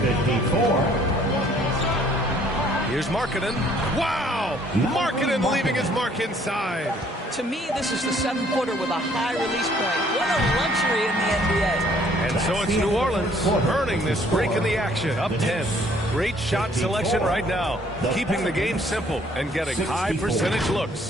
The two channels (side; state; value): both; normal; correlation 0.61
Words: 54. Here's Markkanen. Wow! Markkanen leaving his mark inside. To me, this is the 7-footer with a high release point. What a luxury in the NBA. And so it's New Orleans earning this break in the action, up 10. Great shot selection right now, keeping the game simple and getting high percentage